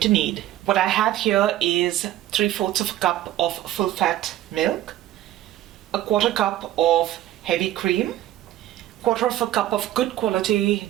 need. What I have here is 3/4 of a cup of full fat milk, a 1/4 cup of heavy cream, 1/4 of a cup of good quality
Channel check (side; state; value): left; quieter; 13.6 dB